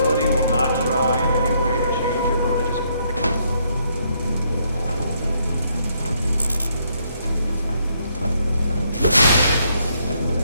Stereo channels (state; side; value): inverted; both; correlation -0.72